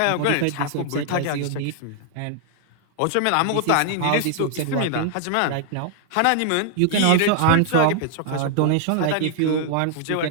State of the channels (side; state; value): both; different; correlation 0.00